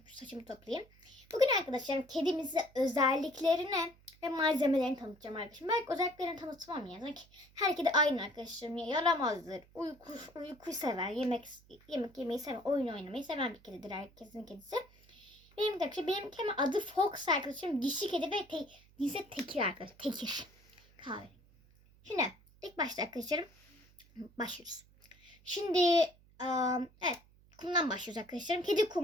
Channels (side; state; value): right; noise; hum, 28 dB below the sound